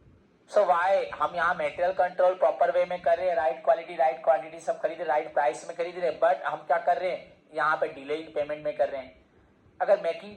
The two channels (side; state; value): both; identical; correlation 1.00